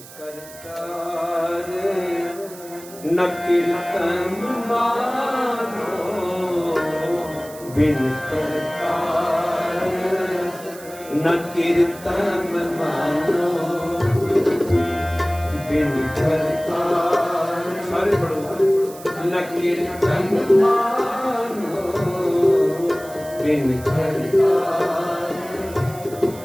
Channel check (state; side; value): noise; right; hiss, 18 dB below the sound